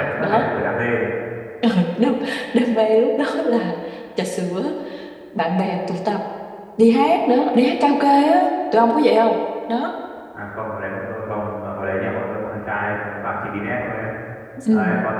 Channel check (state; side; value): identical; both; correlation 1.00